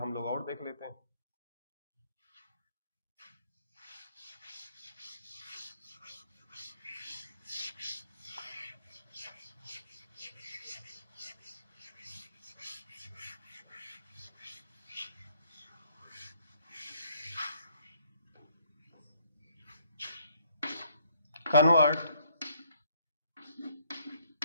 लोग और देख लेते हैं। Convert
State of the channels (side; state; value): both; inverted; correlation -0.67